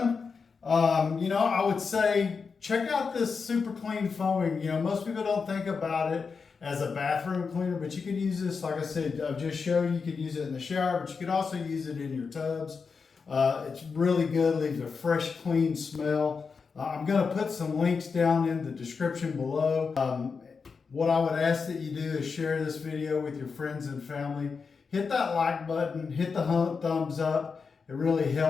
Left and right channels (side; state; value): right; quieter; 5.2 dB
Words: You know, I would say check out this Super Clean foaming. You know, most people don't think about it as a bathroom cleaner, but you can use this, like I said, I've just showed you, you can use it in the shower, but you can also use it in your tubs. It's really good, leaves a fresh, clean smell. I'm going to put some links down in the description below. What I would ask that you do is share this video with your friends and family. Hit that like button, hit the thumbs up. It really